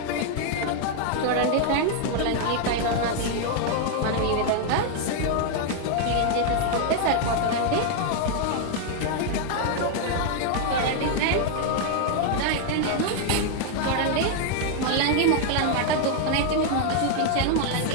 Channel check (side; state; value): both; different; correlation 0.00